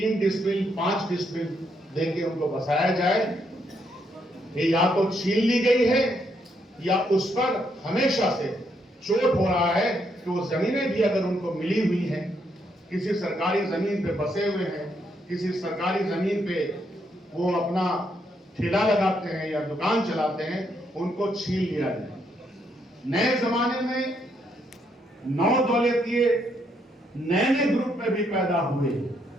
डिसमिल 5 डिसमिल देके उनको बसाया जाए, ये या तो छीन ली गई है या उस पर हमेशा से चोट हो रहा है कि वो जमीनें भी अगर उनको मिली हुई हैं, किसी सरकारी जमीन पे बसे हुए हैं, किसी सरकारी जमीन पे वो अपना ठेला लगाते हैं या दुकान चलाते हैं, उनको छीन लिया जाए। नए जमाने में 9 दौलतिये नए ग्रुप में भी पैदा हुए,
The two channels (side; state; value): both; normal; correlation 0.75